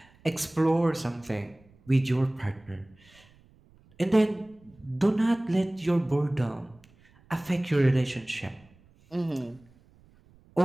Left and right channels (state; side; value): noise; right; rumble, 29 dB below the sound